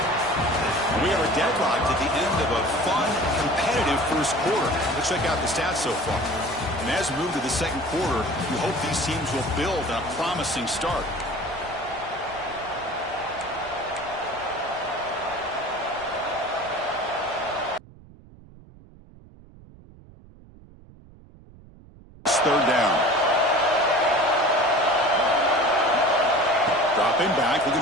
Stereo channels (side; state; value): right; noise; rumble, 22 dB below the sound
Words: We are deadlocked at the end of a fun, competitive first quarter. Let's check out the stats so far. And as we move to the second quarter, we hope these teams will build on a promising start. Third down. Dropping back,